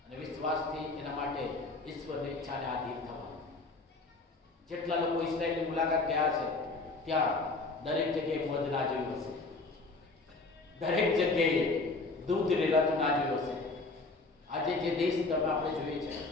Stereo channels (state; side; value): quieter; right; 3.5 dB